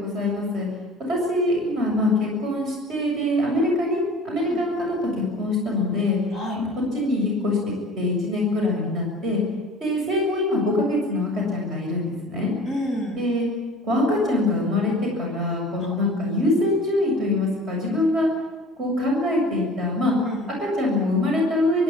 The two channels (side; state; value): both; normal; correlation 0.44